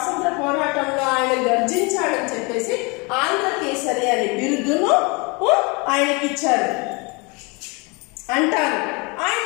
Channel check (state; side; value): quieter; right; 29.1 dB